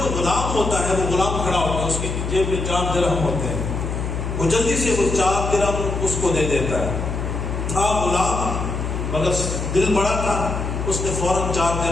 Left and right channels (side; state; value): left; noise; hum, 3 dB below the sound